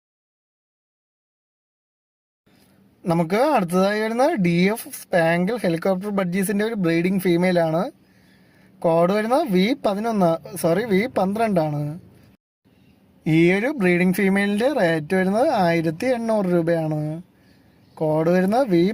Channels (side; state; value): both; identical; correlation 1.00